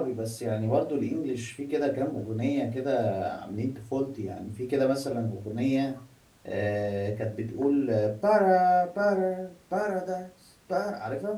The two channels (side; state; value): both; identical; correlation 1.00